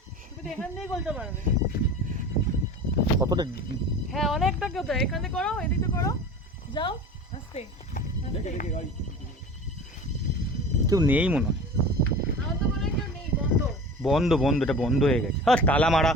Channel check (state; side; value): normal; both; correlation 0.37